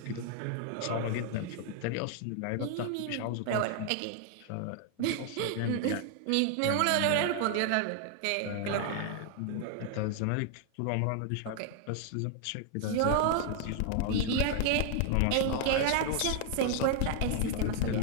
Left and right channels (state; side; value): different; both; correlation 0.00